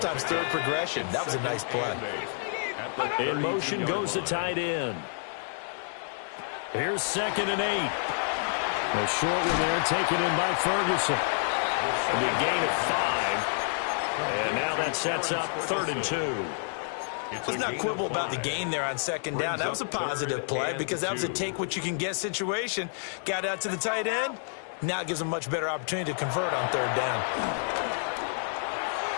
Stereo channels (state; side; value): silent; right; digital silence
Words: third progression. That was a nice play. In motion goes the tight end. Here's 2nd and 8. A short one there, taken in by Ferguson. A big gain of 5. And now that sets up 3rd and 2. Let's not quibble about the gain there on 2nd down. That was a positive play because that was a take-what-you-can-get situation. Got out to the tight end. Now it gives him a much better opportunity to convert on 3rd down.